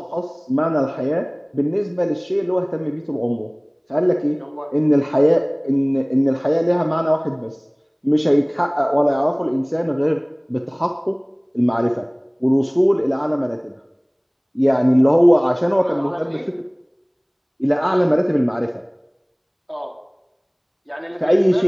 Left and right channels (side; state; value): both; identical; correlation 1.00